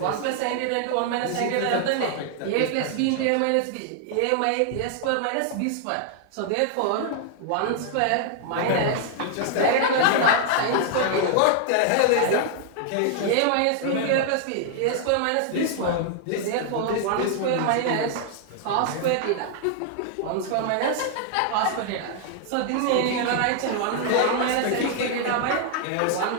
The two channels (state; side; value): different; both; correlation 0.00